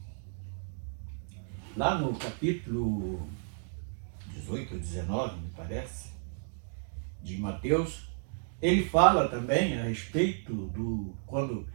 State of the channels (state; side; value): silent; left; digital silence